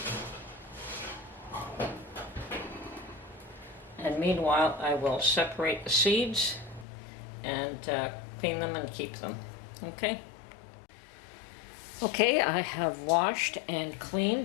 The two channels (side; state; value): right; drops out; at 6.9 s